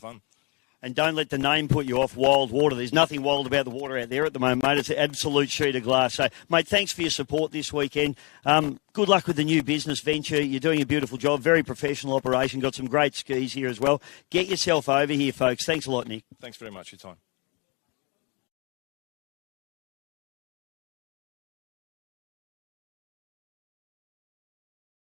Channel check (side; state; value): right; quieter; 30.9 dB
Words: And don't let the name put you off, Wild Water. There's nothing wild about the water out there at the moment, mate. It's an absolute sheet of glass. So, mate, thanks for your support this weekend. Good luck with the new business venture. You're doing a beautiful job. Very professional operation. Got some great skis here as well. Get yourself over here, folks. Thanks a lot, Nick. Thanks very much for your time.